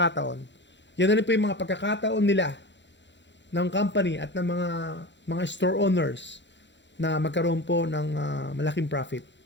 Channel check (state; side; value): late; right; 0.52 ms